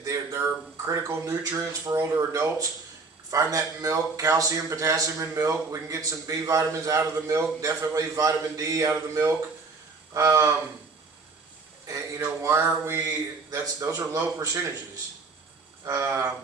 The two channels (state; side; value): quieter; left; 4.2 dB